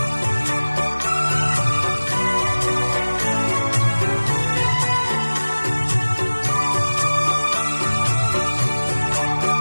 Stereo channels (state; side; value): inverted; both; correlation -1.00